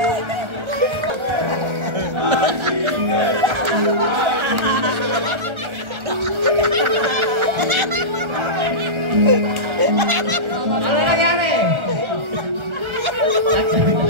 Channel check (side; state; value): left; late; 1.4 ms